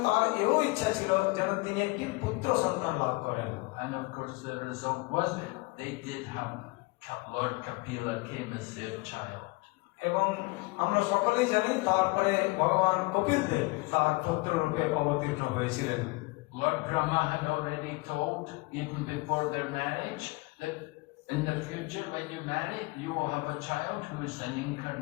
তার এও ইচ্ছা ছিল যেন তিনি একটি পুত্র সন্তান লাভ করেন। And of course the result was they did have Lord Kapila came as their child. এবং আমরা সকলেই জানি তারপরে ভগবান কপিল দেব তার পুত্র রূপে অবতীর্ণ হয়েছিলেন। Lord Brahma had already told, even before their marriage, that in the future when you marry, you will have a child who is an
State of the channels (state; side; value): quieter; right; 25.0 dB